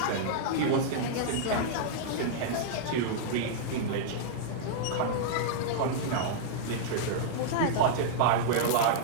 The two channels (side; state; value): both; different; correlation -0.02